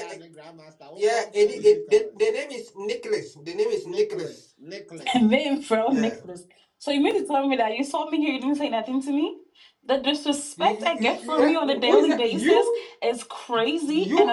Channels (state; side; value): identical; both; correlation 1.00